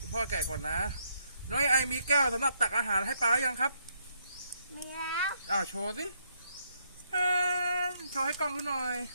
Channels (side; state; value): both; inverted; correlation -0.74